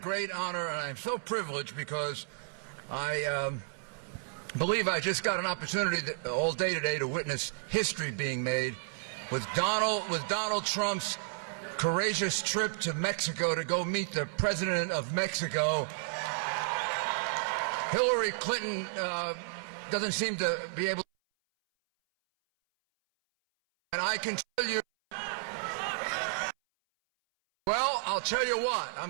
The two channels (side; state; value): left; silent; 56 dB below the other